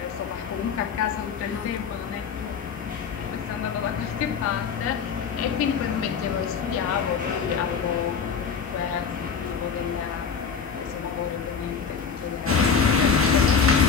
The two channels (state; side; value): quieter; right; 6.3 dB